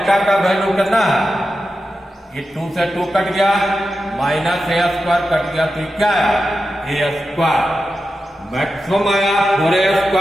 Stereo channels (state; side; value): normal; both; correlation 0.91